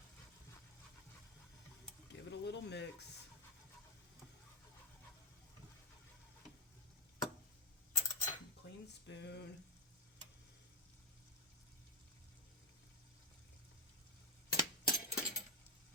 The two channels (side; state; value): both; normal; correlation 0.04